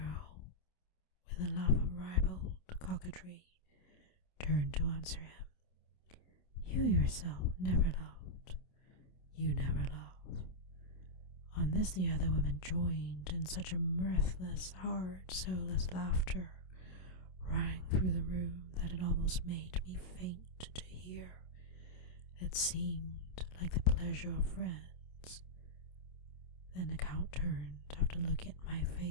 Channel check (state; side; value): late; right; 27 ms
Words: with a laugh of ribald coquetry, turned to answer him. "You yourself never loved. You never love." On this the other women joined in such a mirthless, hard, soulless laughter rang through the room that it almost made me faint to hear. It seemed like the pleasure of friends. Then the Count turned after looking at my